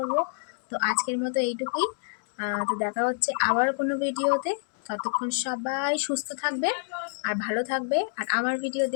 তো আজকের মতো এইটুকুই। তো দেখা হচ্ছে আবার কোনো ভিডিওতে। ততক্ষণ সবাই সুস্থ থাকবে আর ভালো থাকবে, আর আমার ভিডিও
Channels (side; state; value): right; silent; 60 dB below the other